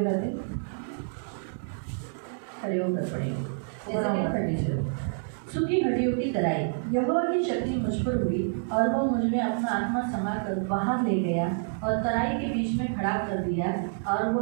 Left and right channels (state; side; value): silent; left; digital silence